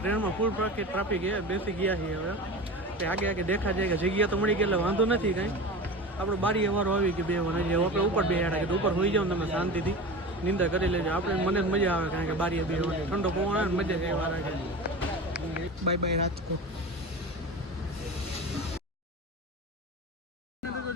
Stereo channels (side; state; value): both; normal; correlation 0.31